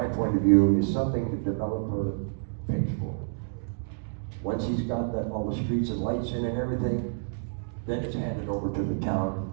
point of view, is something the developer pays for. Once he's got that, all the streets and lights in and everything, then it's handed over to the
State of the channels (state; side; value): silent; left; digital silence